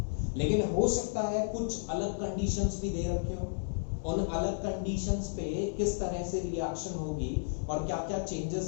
लेकिन हो सकता है कुछ अलग कंडीशंस भी दे रखे हो, उन अलग कंडीशंस पे किस तरह से रिएक्शन होगी और क्या क्या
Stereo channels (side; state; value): right; silent; 56 dB below the other